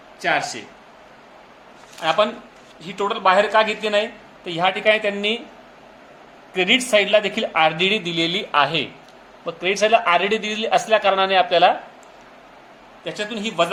आपण ही टोटल बाहेर का घेतली नाही? तर ह्या ठिकाणी त्यांनी क्रेडिट साईडला देखील आरडीडी दिलेली आहे. मग क्रेडिट साईडला आरडीडी दिलेली असल्या कारणाने आपल्याला त्याच्यातून ही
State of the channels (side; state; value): both; identical; correlation 1.00